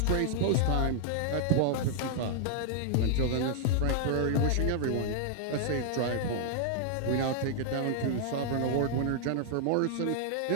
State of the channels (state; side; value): different; both; correlation -0.01